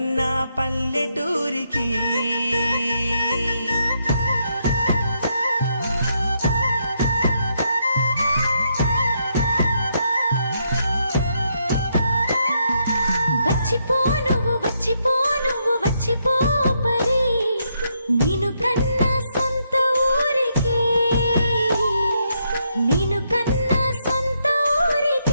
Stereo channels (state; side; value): inverted; both; correlation -0.77